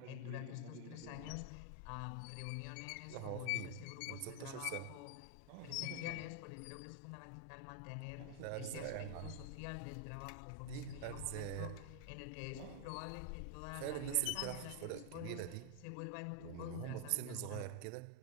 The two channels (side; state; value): both; different; correlation 0.00